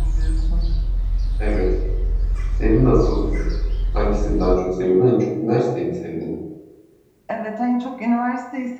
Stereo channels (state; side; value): identical; both; correlation 1.00